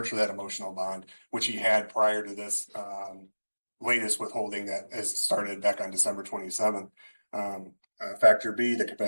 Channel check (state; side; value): inverted; both; correlation -1.00